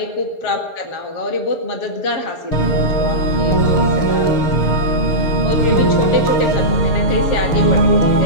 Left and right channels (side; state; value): right; late; 6.6 ms